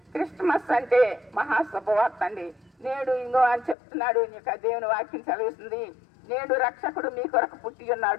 క్రిస్మస్ అంటే మహాశుభవార్త అండి. నేడు ఇంకో అని చెప్తున్నాడు, ఇంకా దేవుని వాక్యం చదివిస్తుంది. నేడు రక్షకుడు మీ కొరకు పుట్టి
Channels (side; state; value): right; drops out; at 3.8 s